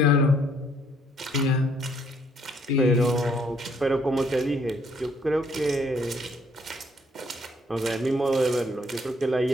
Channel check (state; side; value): normal; both; correlation 0.66